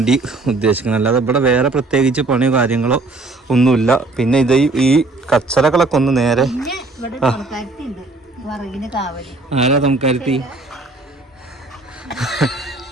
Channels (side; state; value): left; quieter; 3.2 dB